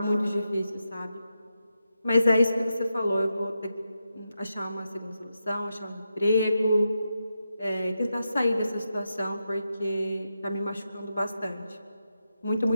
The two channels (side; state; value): both; inverted; correlation -0.87